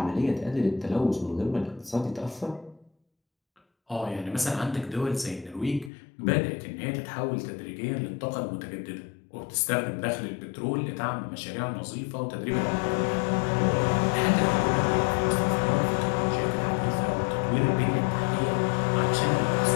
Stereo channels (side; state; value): right; drops out; at 5.9 s